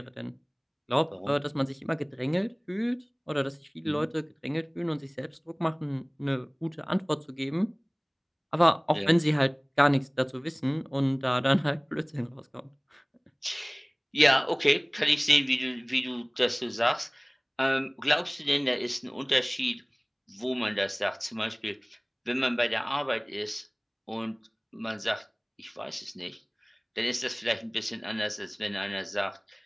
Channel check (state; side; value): identical; both; correlation 1.00